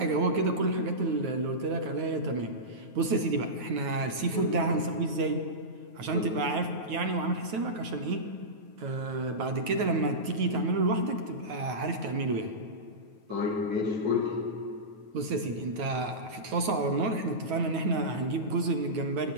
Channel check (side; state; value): left; late; 9.3 ms